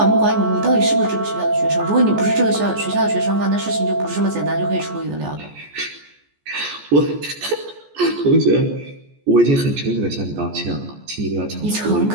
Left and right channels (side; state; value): left; late; 14 ms